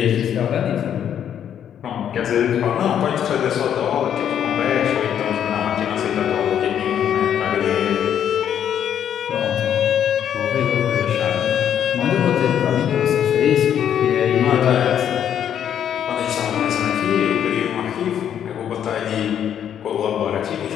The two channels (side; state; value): right; quieter; 9.4 dB